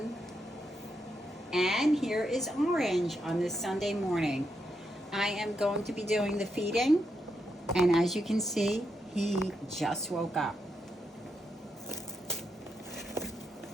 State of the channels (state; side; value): normal; both; correlation 0.82